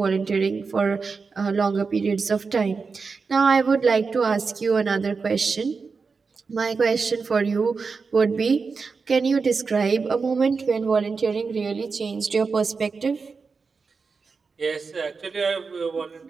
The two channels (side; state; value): left; quieter; 4.8 dB